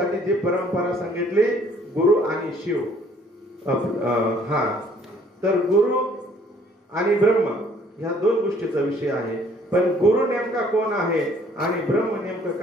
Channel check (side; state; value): both; normal; correlation 0.60